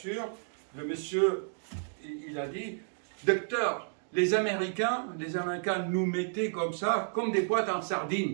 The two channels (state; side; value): silent; left; digital silence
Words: le monsieur, il a dit, docteur, les Américains nous mettaient comme ça, comme des boîtes en